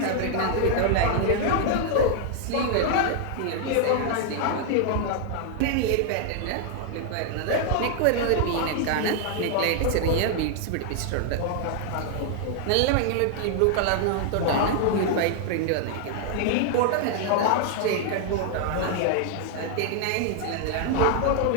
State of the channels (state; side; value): different; both; correlation 0.00